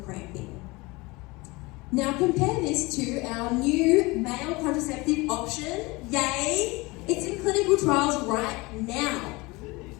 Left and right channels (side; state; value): right; quieter; 23.8 dB